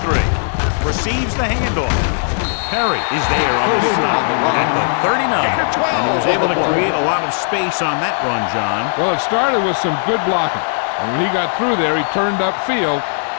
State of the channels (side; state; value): right; silent; digital silence